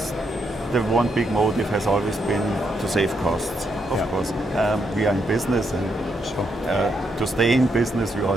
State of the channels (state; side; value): normal; both; correlation 0.79